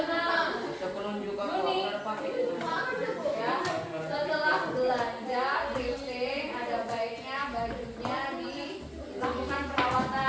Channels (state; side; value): identical; both; correlation 1.00